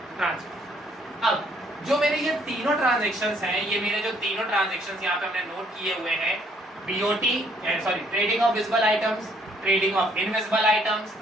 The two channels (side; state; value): both; normal; correlation 0.66